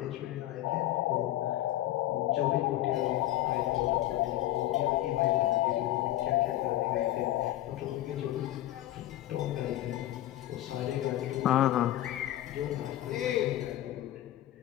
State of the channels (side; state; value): right; quieter; 14.5 dB